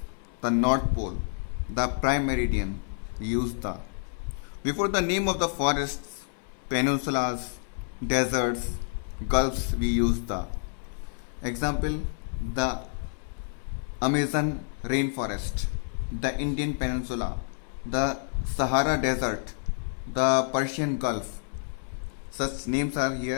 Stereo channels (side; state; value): right; silent; 59 dB below the other